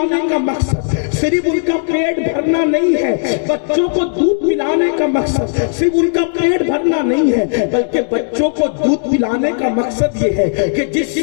کا مقصد صرف ان کا پیٹ بھرنا نہیں ہے، بچوں کو دودھ پلانے کا مقصد صرف ان کا پیٹ بھرنا نہیں ہے، بلکہ بچوں کو دودھ پلانے کا مقصد یہ ہے کہ جس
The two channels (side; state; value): right; silent; digital silence